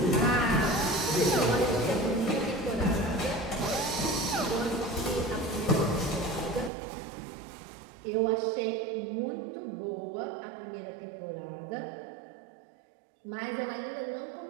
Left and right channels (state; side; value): drops out; left; at 6.7 s